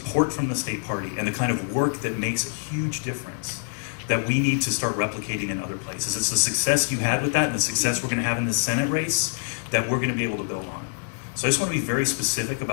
from the State Party, and the kind of work that makes a huge difference that we need to start replicating in other places. It's the success you had with that and the success we're going to have in the Senate race that we're going to be able to build on. So I just want to be very specific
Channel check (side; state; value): right; silent; 58 dB below the other